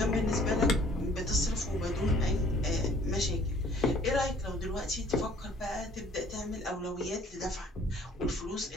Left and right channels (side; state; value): both; normal; correlation 0.56